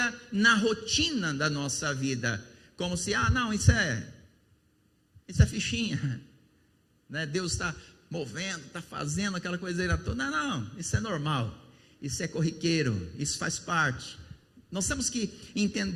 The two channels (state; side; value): identical; both; correlation 1.00